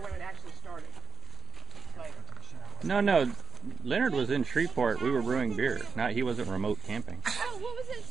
it actually started? Later. No. Leonard was in Shreveport. We were brewing beer. He wasn't remote camping. Oh, what was that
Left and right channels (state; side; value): quieter; left; 5.6 dB